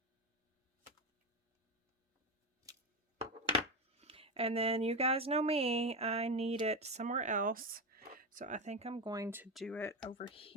And then you guys know me, I need it somewhere else. So I think I'm going to do it over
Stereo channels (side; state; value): both; normal; correlation 0.16